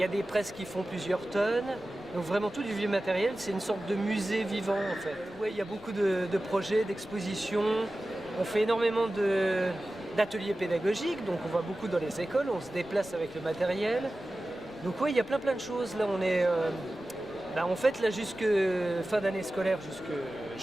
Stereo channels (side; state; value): left; noise; rumble, 27 dB below the sound